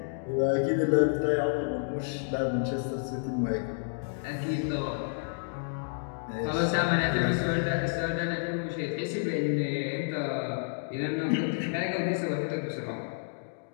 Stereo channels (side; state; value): right; silent; digital silence